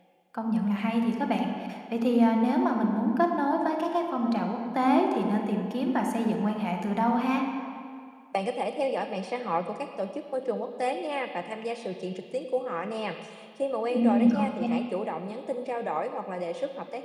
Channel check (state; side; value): identical; both; correlation 1.00